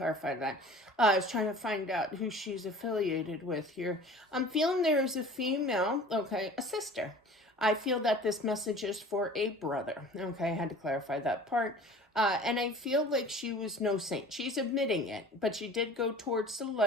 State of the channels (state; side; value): normal; both; correlation 0.44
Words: that. I was trying to find out who she's affiliated with here. I'm feeling there is a female, okay, a sister. I feel that this message is for a brother. Okay, I had to clarify that part. And I feel like she was no saint. She's admitting it, but she did go towards the